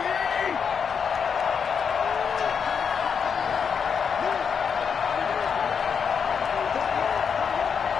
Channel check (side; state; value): right; quieter; 6.6 dB